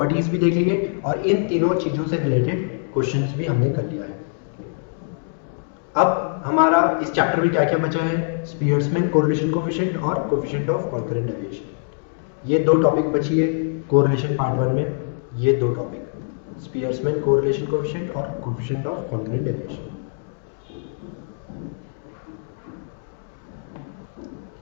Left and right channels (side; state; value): right; silent; digital silence